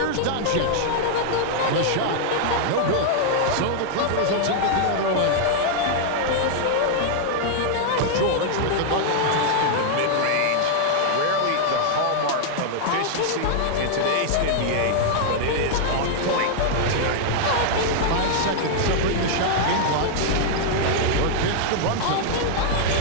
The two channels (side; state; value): both; different; correlation -0.01